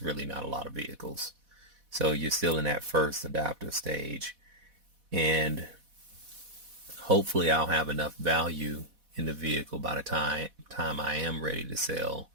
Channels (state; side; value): late; left; 4.1 ms